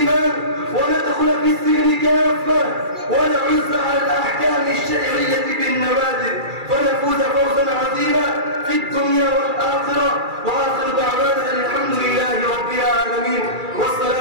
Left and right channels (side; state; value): left; late; 2.3 ms